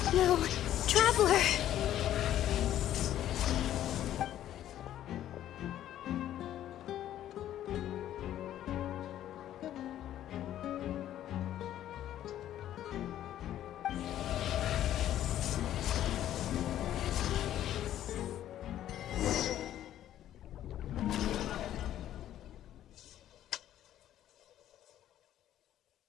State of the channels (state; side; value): quieter; right; 12.0 dB